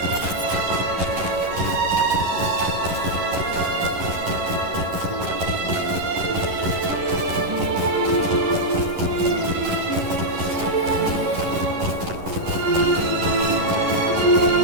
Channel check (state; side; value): late; left; 11 ms